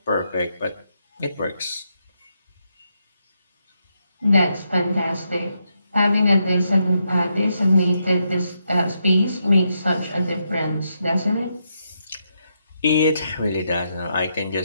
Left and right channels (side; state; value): both; inverted; correlation -0.81